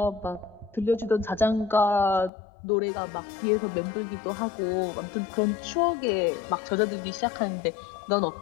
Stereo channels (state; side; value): drops out; right; at 2.3 s